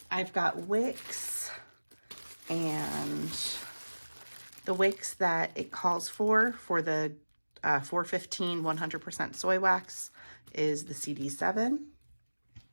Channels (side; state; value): both; inverted; correlation -1.00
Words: I've got wicks, and the wicks that it calls for the 415 100% soy wax is the CD7.